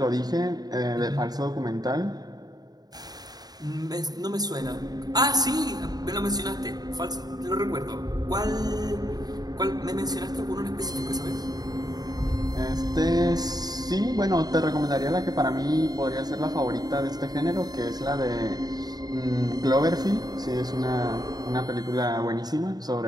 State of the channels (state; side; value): late; left; 0.19 ms